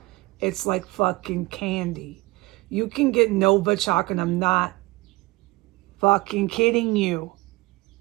It's like fucking candy. You can get Novichok, and I'm not fucking kidding you,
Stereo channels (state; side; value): quieter; left; 21.7 dB